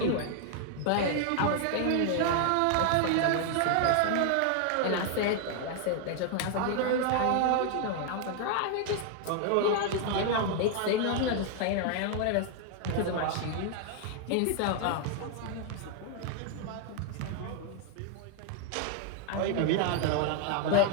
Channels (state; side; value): different; both; correlation 0.00